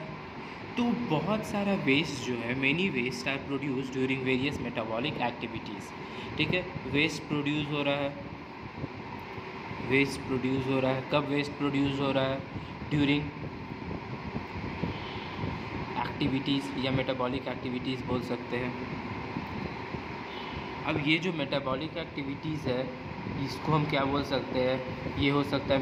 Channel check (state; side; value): identical; both; correlation 1.00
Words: तो बहुत सारा वेस्ट जो है, many waste are produce during various metabolic activities. ठीक है, वेस्ट प्रोड्यूस हो रहा है, वेस्ट प्रोड्यूस हो रहा है, कब वेस्ट प्रोड्यूस हो रहा है, ड्यूरिंग एक्टिविटीज़ या मेटाबॉलिक एक्टिविटीज़ बोल सकते हैं। अब ये जो मेटाबॉलिक एक्टिविटीज़ है इसको हम क्या बोल सकते हैं, ये हो सकता है